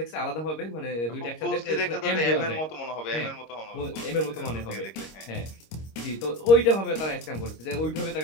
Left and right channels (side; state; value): right; late; 26 ms